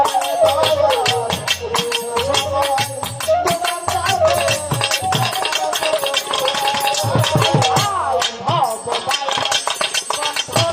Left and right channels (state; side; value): identical; both; correlation 1.00